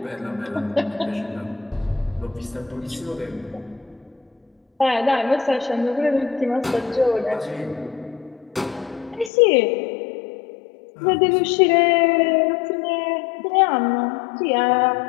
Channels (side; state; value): right; drops out; at 9.3 s